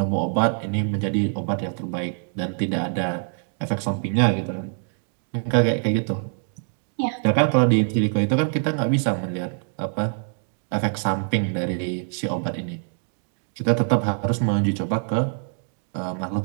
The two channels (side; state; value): left; silent; 62 dB below the other